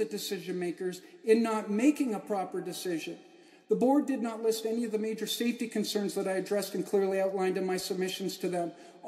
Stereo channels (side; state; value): both; identical; correlation 1.00